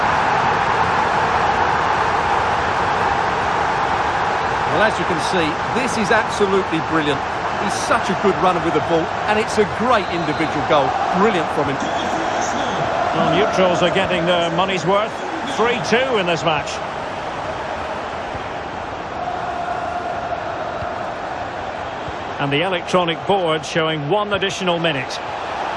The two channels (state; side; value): identical; both; correlation 1.00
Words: Well, as you can see, this is absolutely brilliant. He's such a good runner with the ball, and it's a great individual goal. Brilliant from him. Well, neutrals are getting their money's worth. 3-2 in this match. And the electronic board showing 1 additional minute.